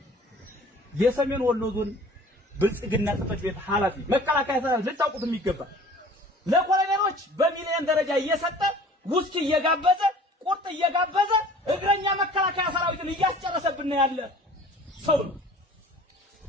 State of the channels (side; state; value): both; normal; correlation 0.47